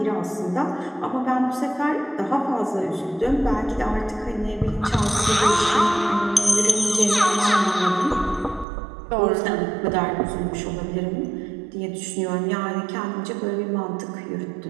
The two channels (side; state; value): left; drops out; at 8.7 s